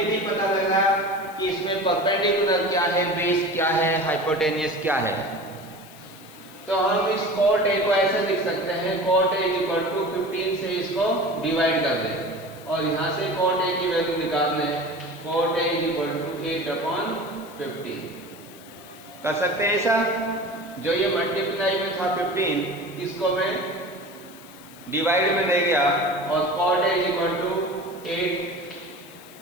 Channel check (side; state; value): left; noise; hiss, 22 dB below the sound